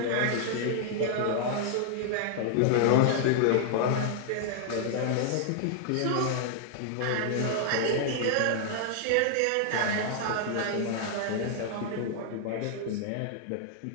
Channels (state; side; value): different; both; correlation -0.01